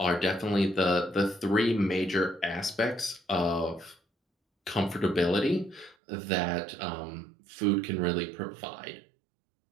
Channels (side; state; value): left; drops out; at 6.0 s